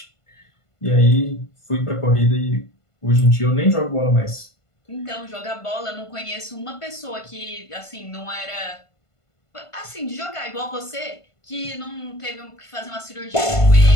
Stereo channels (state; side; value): late; right; 1.5 ms